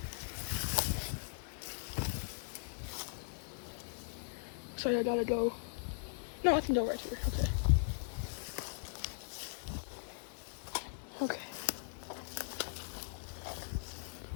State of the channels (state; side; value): silent; right; digital silence